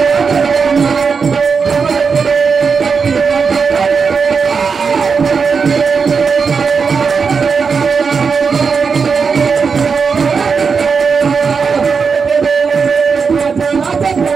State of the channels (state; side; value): quieter; left; 5.5 dB